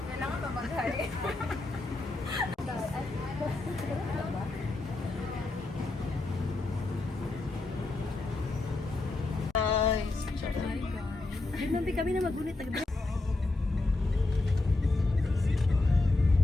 ba mag-hi? Guys. Ay, mampi kami na magunit.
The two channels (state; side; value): quieter; right; 3.1 dB